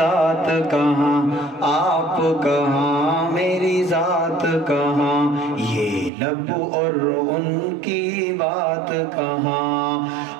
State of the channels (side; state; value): left; drops out; at 6.1 s